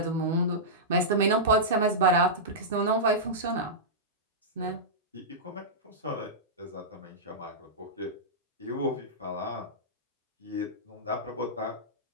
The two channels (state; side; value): normal; both; correlation -0.13